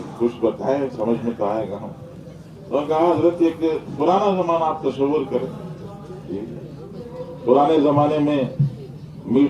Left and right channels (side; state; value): both; identical; correlation 1.00